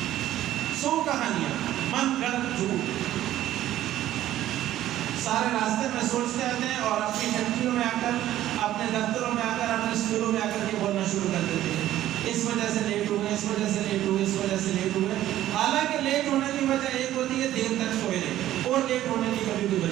100 کہانیاں، من گھڑت جھوٹ سارے راستے میں سوچتے آتے ہیں، اور اپنی فیکٹریوں میں آ کر، اپنے دفتروں میں آ کر، اپنے اسکولوں میں آ کر کے بولنا شروع کر دیتے ہیں، اس وجہ سے لیٹ ہوئے، اس وجہ سے لیٹ ہوئے، اس وجہ سے لیٹ ہوئے۔ حالانکہ لیٹ ہونے کی وجہ ایک ہوتی ہے دیر تک سوئے رہے، اور لیٹ ہونے کی کبھی کوئی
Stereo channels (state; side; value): quieter; left; 13.3 dB